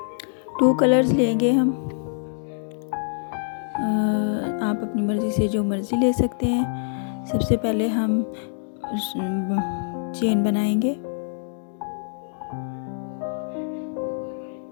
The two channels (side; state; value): right; silent; 62 dB below the other